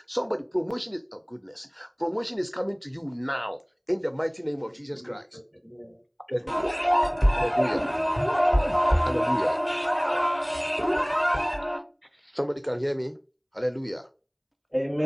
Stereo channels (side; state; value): both; identical; correlation 1.00